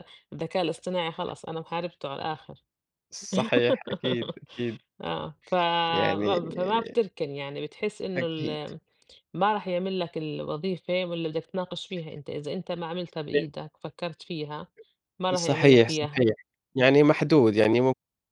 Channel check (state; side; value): identical; both; correlation 1.00